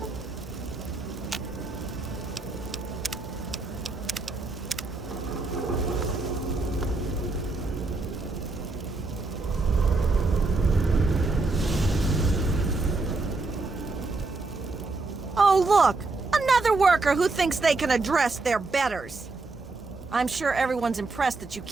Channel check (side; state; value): left; quieter; 3.6 dB